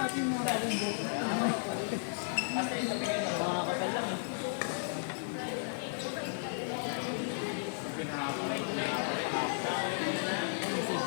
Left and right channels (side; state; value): right; silent; digital silence